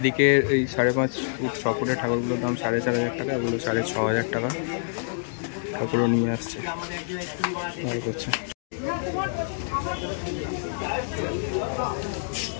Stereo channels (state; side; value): silent; right; digital silence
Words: এই 5.5 ফুট 6 ফুটের ঠাকুরগুলোর দাম 4,500 টাকা, এগুলো 6,500 টাকা। ঠাকুরও নিয়ে আসছে, ভালো করছে।